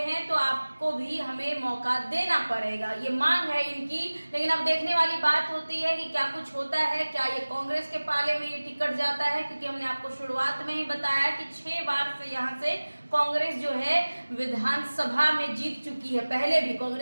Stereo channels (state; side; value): inverted; both; correlation -1.00